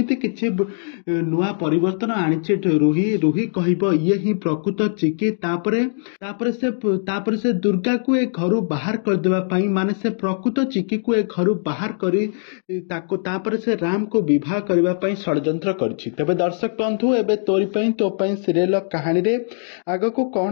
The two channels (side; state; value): right; silent; digital silence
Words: କିଛି ନୂଆ ପରିବର୍ତ୍ତନ ଆଣିଛି ରୁହି କହିବ ଇଏ ହିଁ ପ୍ରକୃତ ଚିକି। ତାପରେ ସେ ଦୁର୍ଗାକୁ ଏ ଘରୁ ବାହାର କରିଦେବା ପାଇଁ, ମାନେ ସେ ପ୍ରକୃତ ଚିକିକୁ ଏ ଘରୁ ବାହାର କରି ତାପରେ ସେ ରାମକୁ ବିବାହ କରିବା ପାଇଁ ଷଡ଼ଯନ୍ତ୍ର କରିଛି। ତେବେ ଦର୍ଶକ ବନ୍ଧୁ, ଏବେ ତୋରି ପାଇଁ ତୋ ପାଇଁ ସିରିଏଲ କାହାଣୀରେ ଆଗକୁ କଣ